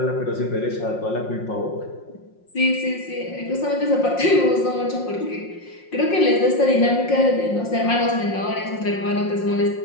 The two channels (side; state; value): right; late; 5.6 ms